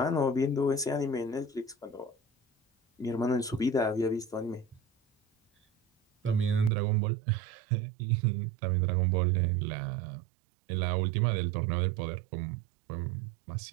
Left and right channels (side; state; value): left; drops out; at 6.7 s